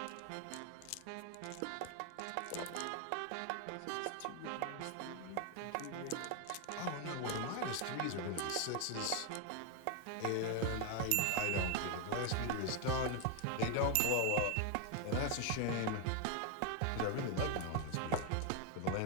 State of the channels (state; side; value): different; both; correlation 0.01